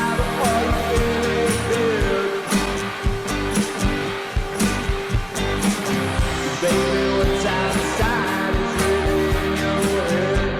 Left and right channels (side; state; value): both; identical; correlation 1.00